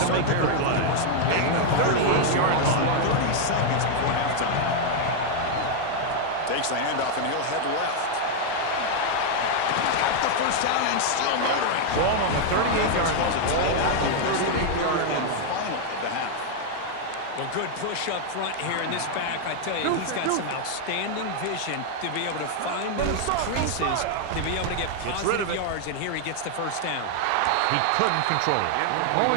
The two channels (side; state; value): both; different; correlation 0.00